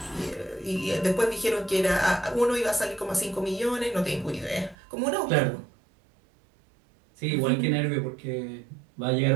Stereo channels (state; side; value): drops out; left; at 4.8 s